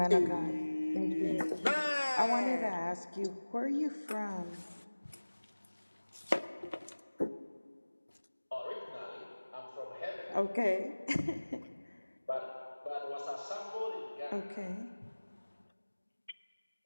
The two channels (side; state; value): both; inverted; correlation -1.00